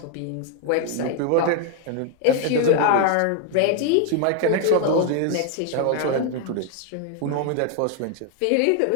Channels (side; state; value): both; different; correlation 0.00